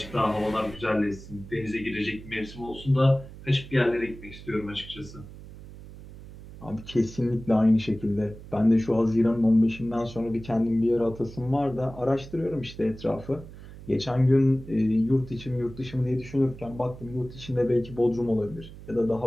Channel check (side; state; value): right; noise; hum, 16 dB below the sound